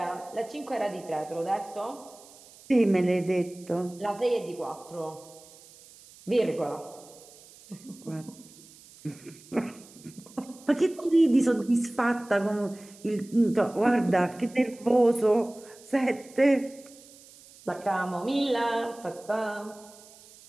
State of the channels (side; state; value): right; noise; hiss, 22 dB below the sound